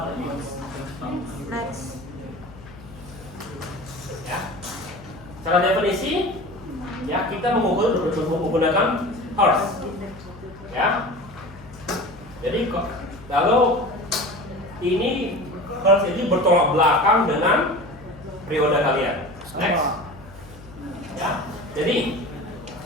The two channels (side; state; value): left; noise; hum, 19 dB below the sound